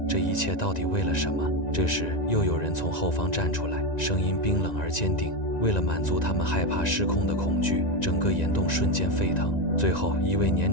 这一切到底为了什么？这时又有人从后方站出来，声音冰冷而坚定：为了满足他们害怕失控的恐惧，整个岩洞瞬间沸腾。最后一位年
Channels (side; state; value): right; late; 1.9 ms